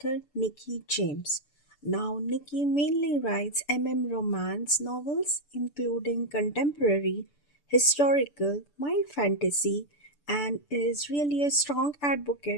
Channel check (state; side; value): late; right; 6.9 ms